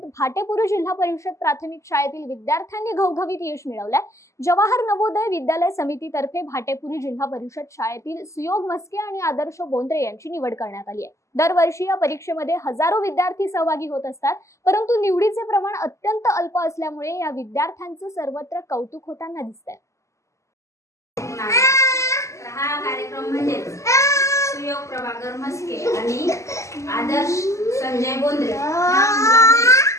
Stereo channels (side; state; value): right; late; 0.14 ms